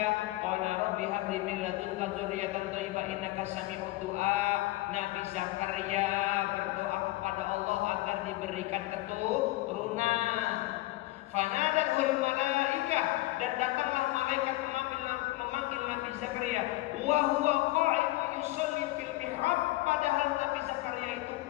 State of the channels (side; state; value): right; quieter; 19.0 dB